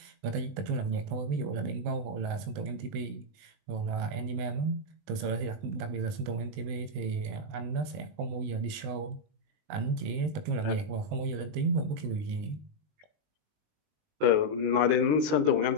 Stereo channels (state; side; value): late; left; 20 ms